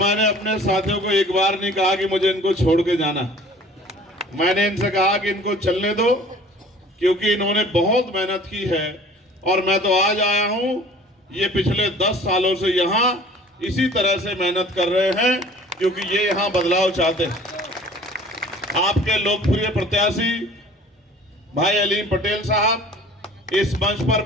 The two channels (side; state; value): both; normal; correlation 0.48